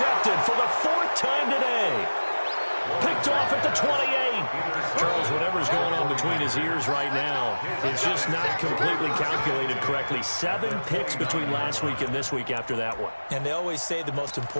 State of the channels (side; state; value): both; inverted; correlation -1.00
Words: for the 4th time today. Picked off at the 28. Charles, whatever's going on between his ears right now, it's just not completely calculated correctly. 7 picks between last week and this week after that one. And they always say the most